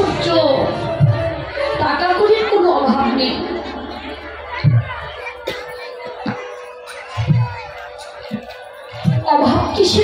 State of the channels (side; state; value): both; identical; correlation 1.00